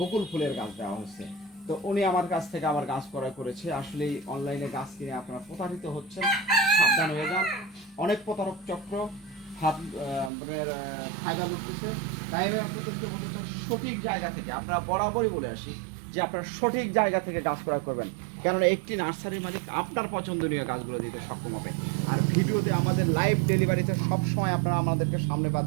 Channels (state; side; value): drops out; left; at 10.3 s